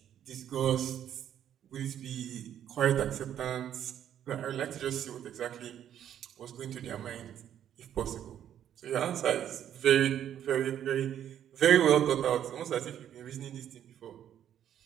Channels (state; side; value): quieter; left; 10.3 dB